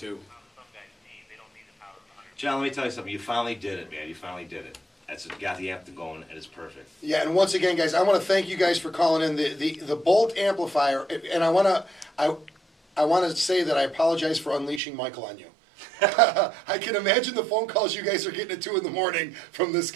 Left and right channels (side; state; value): left; drops out; at 14.8 s